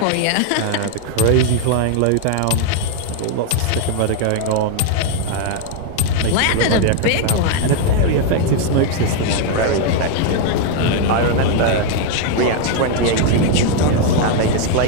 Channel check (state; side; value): different; both; correlation 0.01